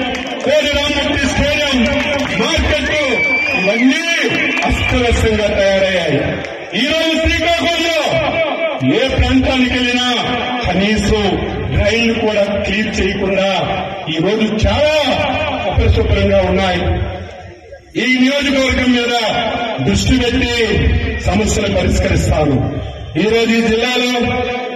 కోడి రామూర్తి స్టేడియం, మార్కెట్ ఇవన్నీ అస్తవ్యస్తంగా తయారయ్యాయి. ఈ రోజు శ్రీకాకుళంలో ఏ ప్రాంతానికి వెళ్ళినా కనీసం డ్రైన్లు కూడా క్లీన్ చేయకుండా ఈ రోజు చాలా అపరిశుభ్రంగా ఉన్నాయి. ఈ నియోజకవర్గం మీద దృష్టి పెట్టి సమస్యలు పరిష్కరిస్తాను. ఈ రోజు ఈ జిల్లాలో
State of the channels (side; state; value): both; identical; correlation 1.00